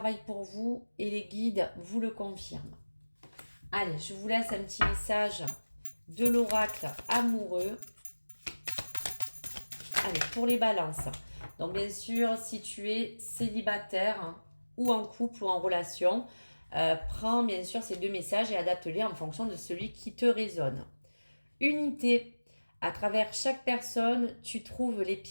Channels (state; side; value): inverted; both; correlation -1.00